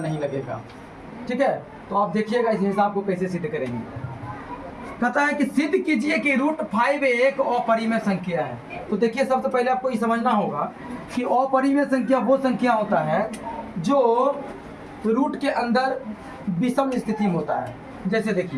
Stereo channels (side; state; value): both; identical; correlation 1.00